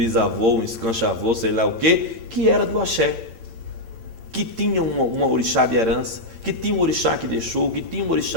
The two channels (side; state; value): left; late; 8.8 ms